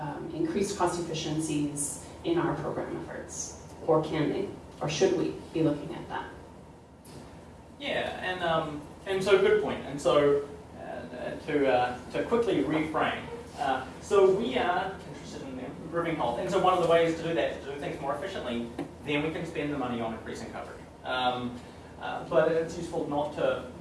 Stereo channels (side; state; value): both; identical; correlation 1.00